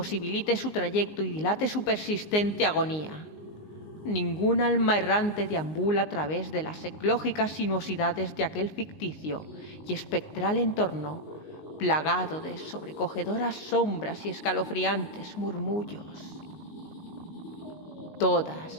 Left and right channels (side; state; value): right; late; 19 ms